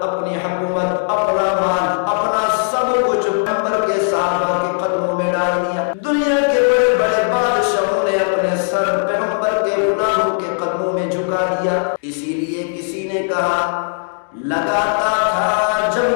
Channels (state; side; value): silent; right; digital silence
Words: اپنی حکومت، اپنا مال، اپنا سب کچھ پیغمبر کے صحابہ کے قدموں میں ڈال دیا۔ دنیا کے بڑے بڑے بادشاہوں نے اپنے سر پیغمبر کے غلاموں کے قدموں میں جھکا دیا۔ اسی لیے کسی نے کہا لگاتا تھا